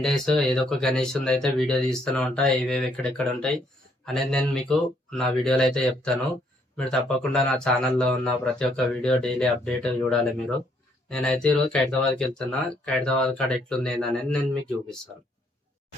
days ఏదో ఒక గణేష్ అయితే వీడియో తీస్తూనే ఉంటా. ఏవేవి ఎక్కడెక్కడ ఉంటాయి అనేది నేను మీకు నా వీడియోలో అయితే చెప్తాను. మీరు తప్పకుండా నా ఛానల్లో ఉన్న ప్రతి ఒక్క వీడియో డైలీ అప్డేట్ చూడాలి మీరు. నేనైతే ఈరోజు ఖైరతాబాద్కి వెళ్తున్నా. ఖైరతాబాద్ కాడ ఎట్లుంది ఏందనేది నేను మీకు చూపిస్తాను.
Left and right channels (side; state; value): both; normal; correlation 0.69